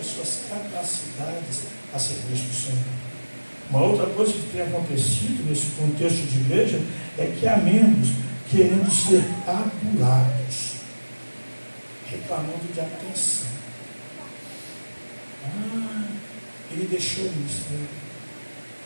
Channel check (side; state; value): both; inverted; correlation -1.00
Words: suas capacidades a serviço do Senhor. Uma outra coisa que tem acontecido nesse contexto de igreja é que há membros querendo ser adulados, reclamando de atenção. Ele deixou o ministério.